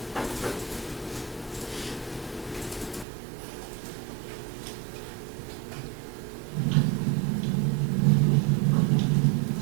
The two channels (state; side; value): drops out; left; at 3.1 s